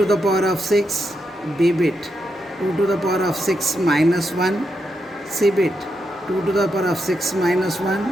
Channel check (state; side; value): normal; both; correlation 0.83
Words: the power of 6, B bit, 2 to the power of 6 minus 1, C bit, 2 to the power of 6 minus 1